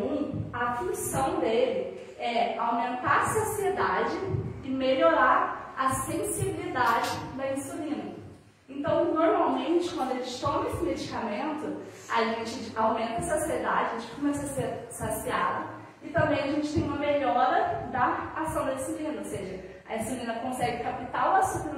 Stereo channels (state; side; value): identical; both; correlation 1.00